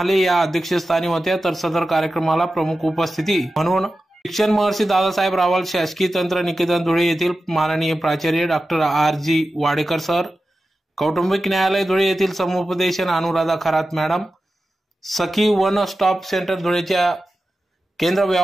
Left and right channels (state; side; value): normal; both; correlation 0.93